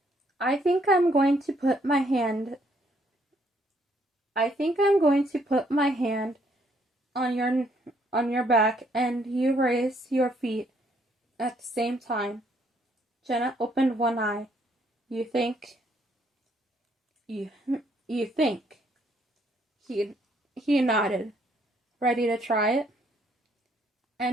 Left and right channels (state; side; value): normal; both; correlation 0.68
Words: I think I'm going to put my hand on your back and you raise your feet at the same time. Jenna opened one eye. You think? You think? He nodded. Ready to try it?